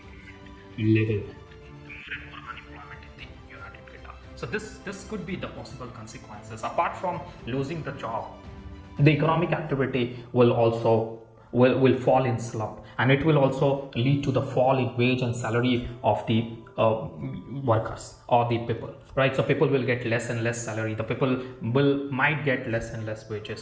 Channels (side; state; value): both; identical; correlation 1.00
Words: more and more unemployment in the United Kingdom. So this could be the possible consequences. Apart from losing the job, the economic activity will also fall in slump, and it will also lead to the fall in wage and salary of the workers or the people, right? So people will get less and less salary. The people might get less and less